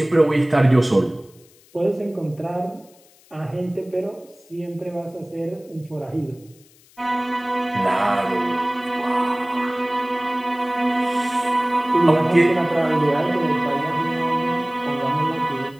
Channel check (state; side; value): noise; left; hiss, 28 dB below the sound